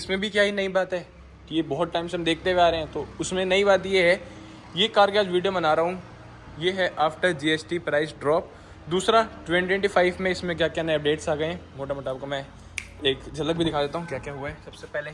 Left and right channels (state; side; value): identical; both; correlation 1.00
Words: भी क्या ही नई बात है कि ये बहुत टाइम से हम देखते हुए आ रहे हैं, तो उसमें नई बात ये है, ये कार की आज वीडियो बना रहा हूँ ये है आफ्टर जीएसटी प्राइस ड्रॉप। दूसरा 2025 में इसमें क्या क्या नए अपडेट्स आ गए हैं, मोटा मोटा आपको मैं एक झलक भी दिखा देता हूँ क्या क्या हुआ है। सबसे पहले